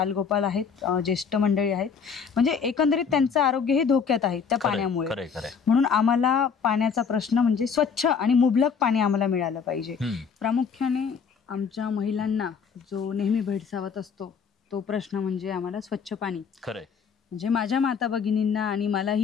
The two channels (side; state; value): right; quieter; 6.3 dB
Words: आहेत, ज्येष्ठ मंडळी आहेत, म्हणजे एकंदरीत त्यांचं आरोग्य हे धोक्यात आहे त्या पाण्यामुळे. म्हणून आम्हाला पाण्याचा प्रश्न म्हणजे स्वच्छ आणि मुबलक पाणी आम्हाला मिळालं पाहिजे. प्रामुख्याने आमच्या महिलांना जो नेहमी भेडसावत असतो तो प्रश्न म्हणजे आम्हाला स्वच्छ पाणी. म्हणजे माझ्या माता भगिनींना आणि